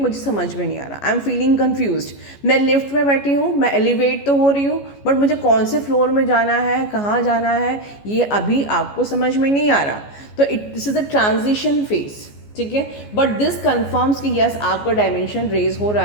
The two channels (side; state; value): right; late; 14 ms